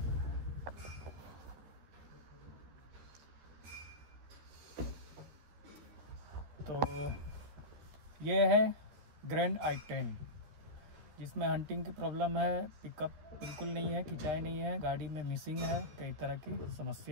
तो ये है ग्रैंड i10, जिसमें हंटिंग की प्रॉब्लम है, पिकअप बिल्कुल नहीं है, खिंचाई नहीं है, गाड़ी में मिसिंग है, कई तरह की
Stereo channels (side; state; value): left; late; 13 ms